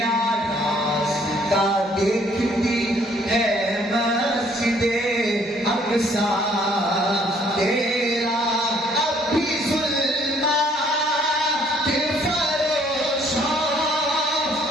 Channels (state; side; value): normal; both; correlation 0.62